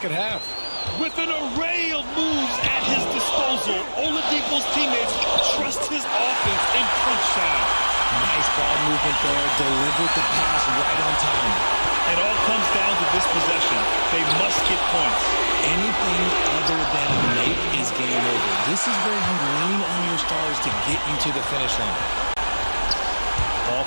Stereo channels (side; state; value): both; inverted; correlation -1.00